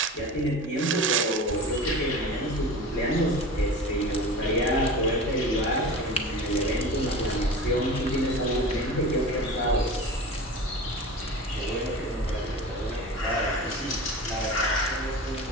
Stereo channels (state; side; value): normal; both; correlation 0.33